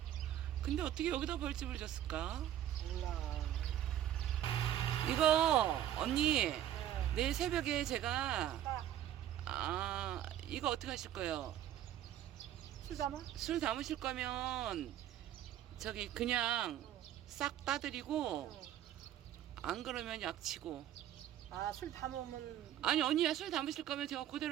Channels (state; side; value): quieter; left; 11.7 dB